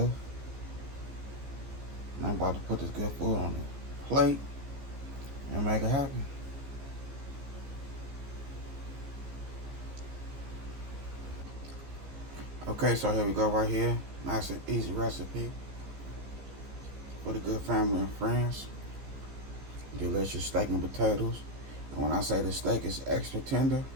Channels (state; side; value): late; left; 15 ms